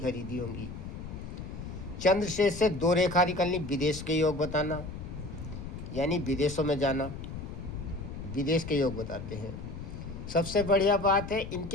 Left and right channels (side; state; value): left; noise; rumble, 9 dB below the sound